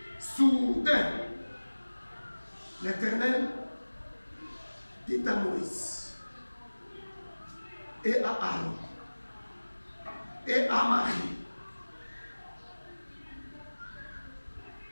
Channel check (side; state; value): both; inverted; correlation -1.00